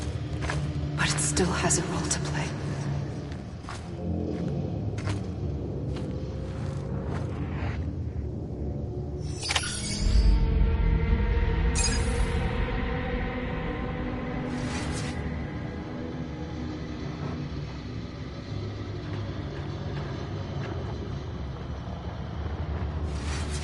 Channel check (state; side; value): identical; both; correlation 1.00